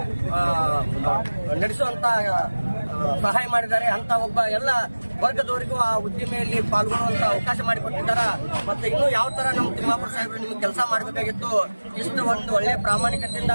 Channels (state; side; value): inverted; both; correlation -1.00